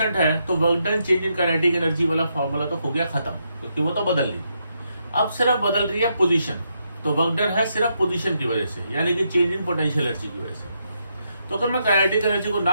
है, तो work done change in kinetic energy वाला फॉर्मूला तो हो गया खत्म, क्योंकि वो तो बदल रही। अब सिर्फ बदल रही है पोजीशन, तो वर्क डन है सिर्फ पोजीशन की वजह से, यानी कि चेंज इन पोटेंशियल एनर्जी की वजह से। तो अगर मैं काइनेटिक एनर्जी को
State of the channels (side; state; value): both; inverted; correlation -0.80